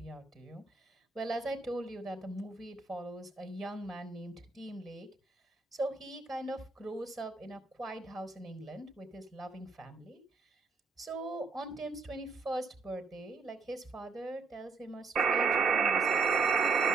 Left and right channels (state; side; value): quieter; left; 4.3 dB